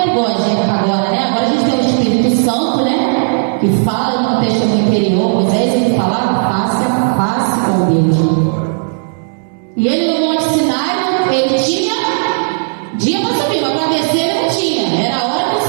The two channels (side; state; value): left; silent; digital silence